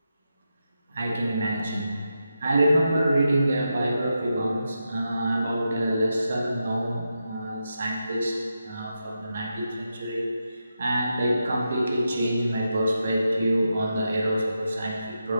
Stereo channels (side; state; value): both; inverted; correlation -0.87